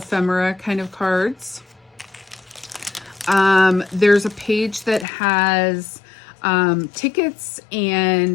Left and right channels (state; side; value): drops out; right; at 5.1 s